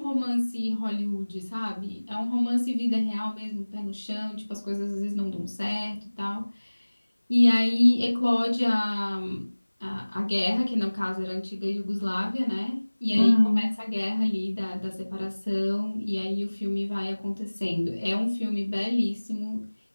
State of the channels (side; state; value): both; inverted; correlation -1.00